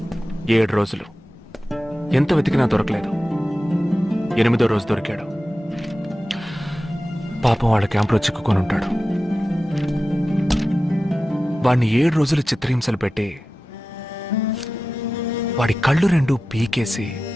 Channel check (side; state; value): both; normal; correlation 0.94